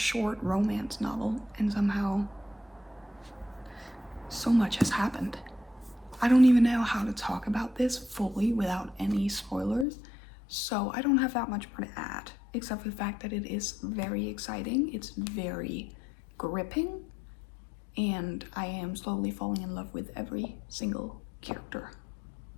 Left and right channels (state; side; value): drops out; right; at 9.9 s